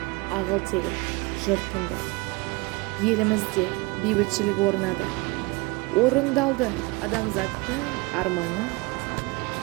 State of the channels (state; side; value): quieter; left; 25.1 dB